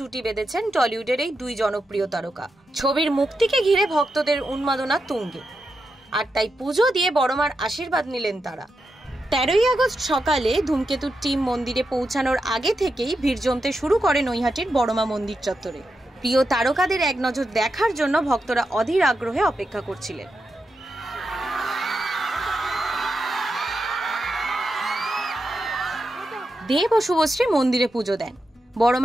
বেঁধেছেন টলিউডের এই দুই জনপ্রিয় তারকা। ছবির মুক্তিকে ঘিরে ভক্তদের উন্মাদনা তুঙ্গে, আর তাই পুজো দিয়ে বড়মার আশীর্বাদ নিলেন তারা। 13ই আগস্ট সকালে ধূমকেতুর টিম মন্দিরে পৌঁছানোর আগে থেকেই ভিড় জমতে শুরু করে নৈহাটির বড়মা মন্দির চত্বরে। প্রিয় তারকাদের এক নজর দেখার জন্য ভক্তরা অধীর আগ্রহে অপেক্ষা করছিলেন। দেব ও শুভশ্রী মন্দিরে পুজো দেন,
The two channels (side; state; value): both; normal; correlation 0.87